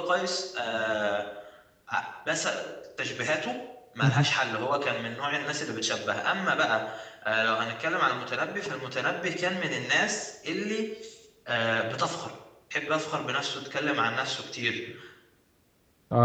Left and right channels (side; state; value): both; identical; correlation 1.00